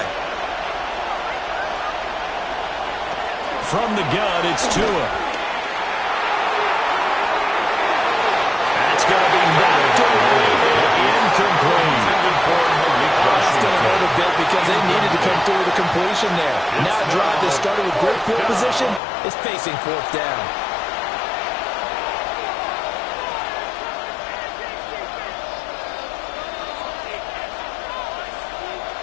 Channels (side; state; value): right; drops out; at 19.0 s